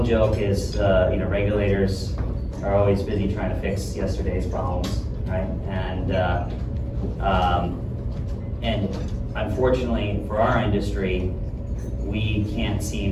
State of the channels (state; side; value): identical; both; correlation 1.00